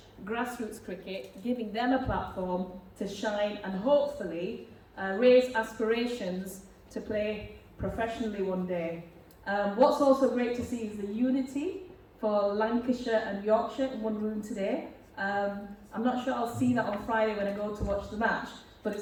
grassroots cricket, giving them a platform to shine and hopefully raise aspirations to play professionally one day. What's also great to see is the unity for Lancashire and Yorkshire in one room today. I'm not sure I'll see that on Friday when I go to watch the match, but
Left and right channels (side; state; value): both; identical; correlation 1.00